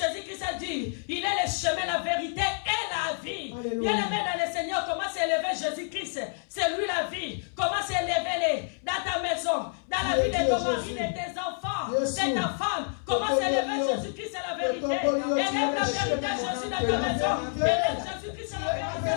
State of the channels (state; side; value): silent; right; 58 dB below the other